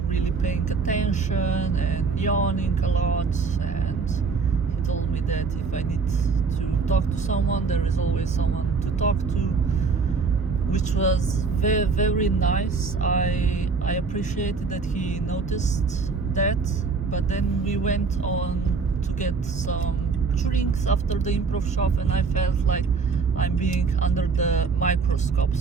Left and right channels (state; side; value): quieter; left; 4.8 dB